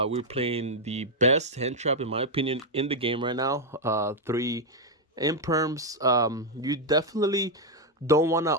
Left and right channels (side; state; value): both; normal; correlation 0.01